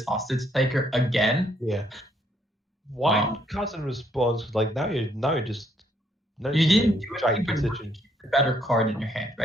hostage taker again. Yeah. Why cast in response? Like now you're just. You didn't do giant anything but position. keep the better card in your hand,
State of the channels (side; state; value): both; normal; correlation 0.70